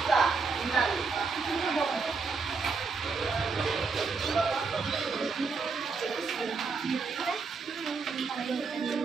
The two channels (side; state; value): left; quieter; 4.6 dB